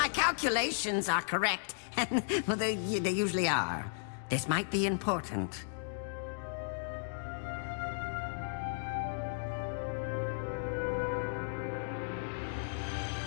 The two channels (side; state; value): right; silent; digital silence